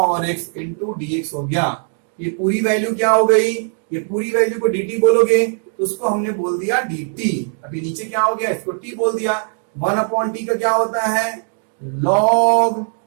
x इंटू dx हो गया। ये पूरी वैल्यू क्या हो गई, ये पूरी वैल्यू को dt बोलोगे तो उसको हमने बोल दिया dt। अभी नीचे क्या हो गया, इसको t बोल दिया। 1 अपॉन t का क्या होता है log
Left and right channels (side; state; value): left; silent; 58 dB below the other